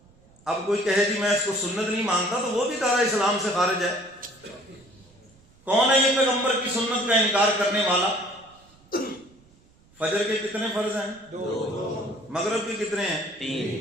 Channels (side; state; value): right; noise; rumble, 29 dB below the sound